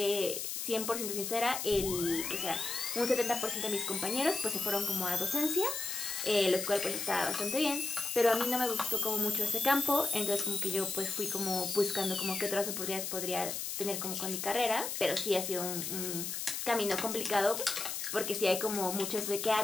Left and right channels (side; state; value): left; noise; hiss, 4 dB below the sound